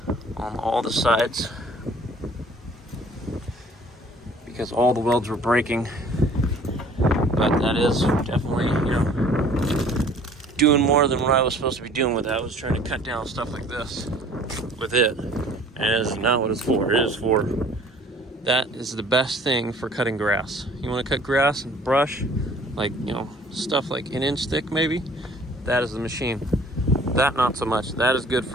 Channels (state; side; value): normal; both; correlation 0.52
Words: on all the sides because all the welds were breaking. But that is definitely, doing more than what I was supposed to be doing with it. I was trying to cut down stuff like this with it, and it is not what it's for. It is for, that is the best thing for cutting grass. You want to cut grass and brush, like, stuff like an inch thick maybe, that is the machine. That, not so much. That is good